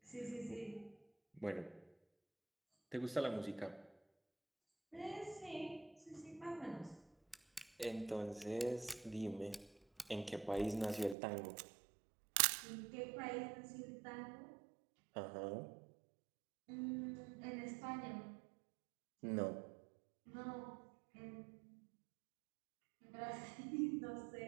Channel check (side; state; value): left; drops out; at 11.2 s